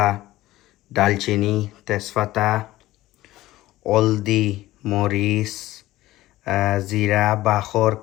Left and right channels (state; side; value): quieter; right; 16.4 dB